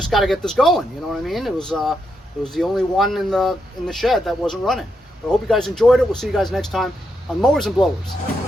got to get this going. You know what I mean? It was the only one in the shed that wasn't running. But I hope you guys enjoyed it. We'll see you guys next time on Mowers and Blowers.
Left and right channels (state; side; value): normal; both; correlation 0.81